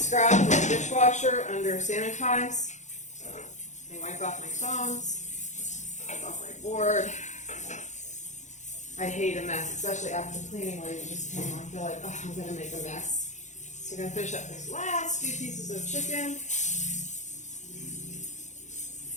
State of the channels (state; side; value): late; right; 0.34 ms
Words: in the dishwasher under sanitize. I wipe off my tongs, wipe off my board. I hate a mess, especially after the cleaning lady just came on. I feel like, oh, I'm going to make a mess. So I'm going to finish up these last few pieces of chicken.